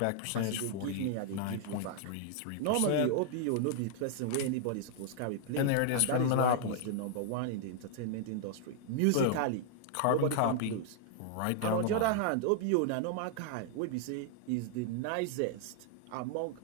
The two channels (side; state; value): both; different; correlation -0.01